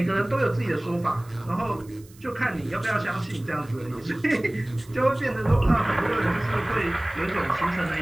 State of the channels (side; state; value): right; noise; hiss, 26 dB below the sound